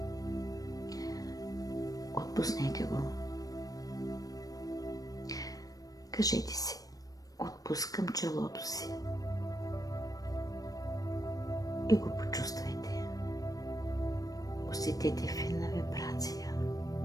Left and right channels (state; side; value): late; right; 0.18 ms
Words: Отпуснете го. Кажете си: отпускам челото си. И го почувствайте. Усетете финна вибрация.